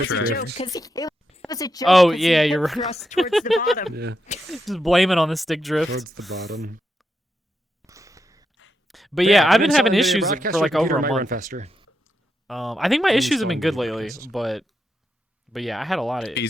a Drift. joke because it was a joke. Oh, 'cause he yeah, hip you're right. thrust towards the bottom. Yeah, Just blame it on the stick drift. towards the bottom. But yeah, I've been uninstall having NVIDIA issues Broadcast, for your like computer over a might run month. faster. I think my issues have been good Uninstall lately, NVIDIA but yeah, I had a lot of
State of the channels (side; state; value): both; normal; correlation 0.84